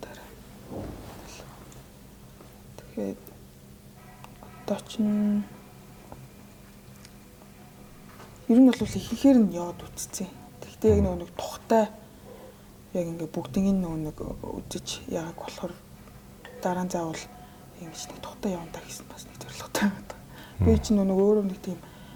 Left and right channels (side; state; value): both; identical; correlation 1.00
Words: Тэгээд одоо чинь ер нь бол ихээр нь яваад үтцсэн. Тэгтээ яг нэг тухтай яг ингээ бүгднийг нэг үзэж яагаад болохоор дараа нь заавал ингэж нэг тухтай явна та гэсэн бас нэг зорилготой байна. Би чинь нэг өөрөө нэг тийм